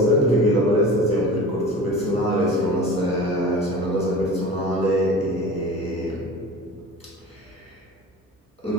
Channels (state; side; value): normal; both; correlation 0.36